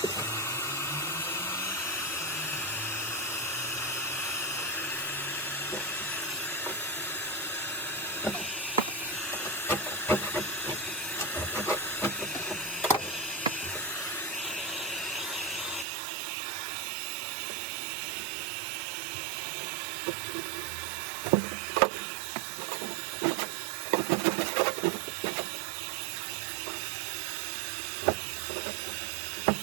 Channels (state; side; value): drops out; left; at 15.9 s